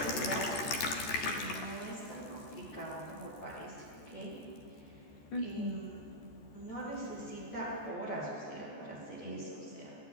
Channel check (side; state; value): right; late; 14 ms